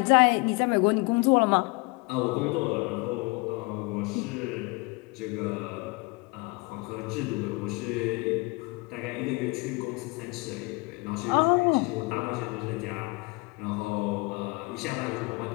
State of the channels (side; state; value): right; quieter; 27.6 dB